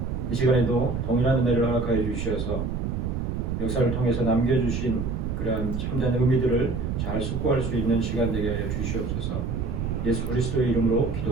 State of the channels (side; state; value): right; noise; rumble, 2 dB below the sound